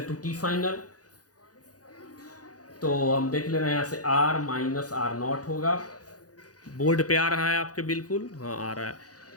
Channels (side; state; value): right; late; 0.68 ms